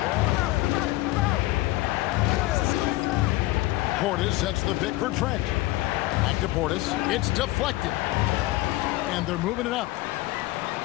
Portis sets the pick for Trent. Back to Portis. It's deflected. And they're moving it up.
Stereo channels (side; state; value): right; quieter; 18.5 dB